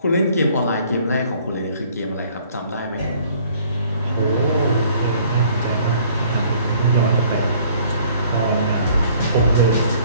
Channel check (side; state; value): both; inverted; correlation -0.58